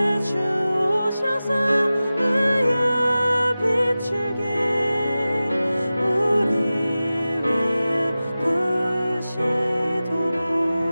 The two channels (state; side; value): inverted; both; correlation -0.96